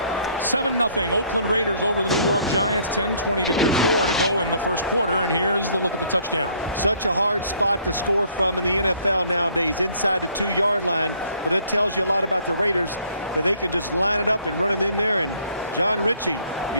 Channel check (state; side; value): inverted; both; correlation -0.62